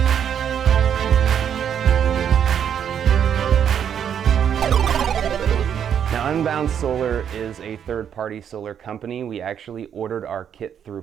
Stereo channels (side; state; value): left; quieter; 8.6 dB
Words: Now, Unbound Solar is a third-party solar company. We actually ordered our kit through